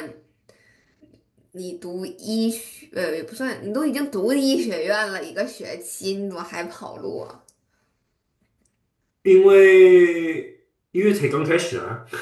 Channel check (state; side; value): identical; both; correlation 1.00